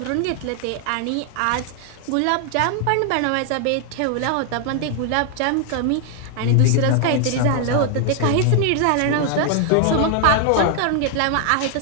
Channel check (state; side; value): different; both; correlation 0.00